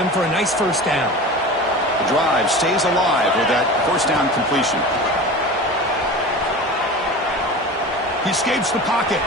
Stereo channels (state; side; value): normal; both; correlation 0.33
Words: for a nice 1st down. The drive stays alive with that 1st down completion. He escapes the pocket.